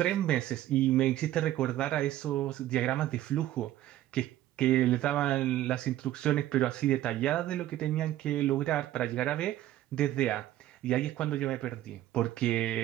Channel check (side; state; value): left; quieter; 14.0 dB